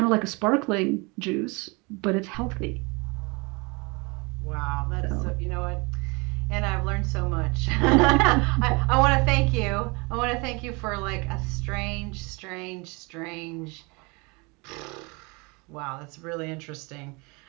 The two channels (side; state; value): left; quieter; 28.3 dB